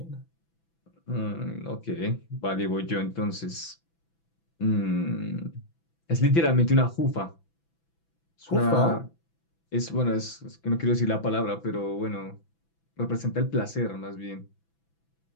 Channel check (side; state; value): right; late; 6.0 ms